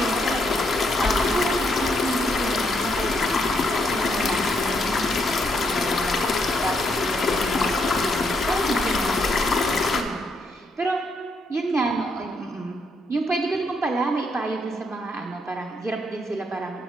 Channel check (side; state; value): both; normal; correlation 0.76